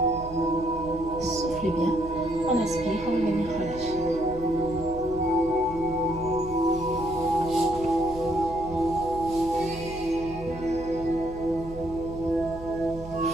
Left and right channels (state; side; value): noise; right; hum, 14 dB below the sound